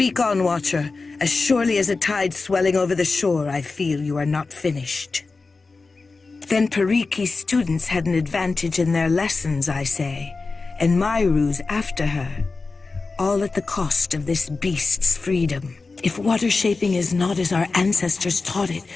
on, Watcher. As surely as a tide swelling over the shore, I feel you are not finished. Then Pariki's students had an advantage in their lessons, I say, and Myru's after her. All at the cost of this beast's freedom. If water shaping is not as our ancestors taught it,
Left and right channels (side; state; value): right; quieter; 4.0 dB